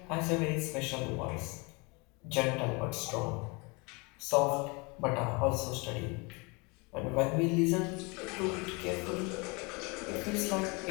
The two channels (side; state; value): right; quieter; 29.0 dB